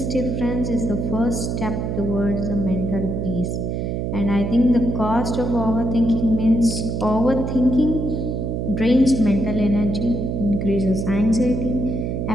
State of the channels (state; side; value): noise; right; hum, 2 dB below the sound